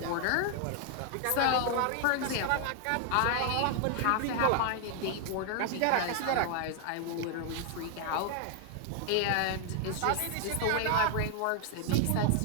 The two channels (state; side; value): different; both; correlation 0.00